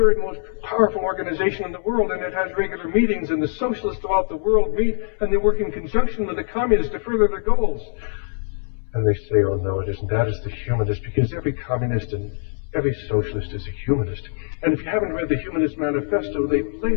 most powerful organization in the world, and it has regular meetings, and the socialists throughout the world meet, and they work in conjunction with the communists to further their goals. And they say, oh, no, it isn't. That is the humanist, because every communist in Every socialist is a humanist. And if you haven't read the Humanist Manifesto, they've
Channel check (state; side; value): silent; right; 64 dB below the other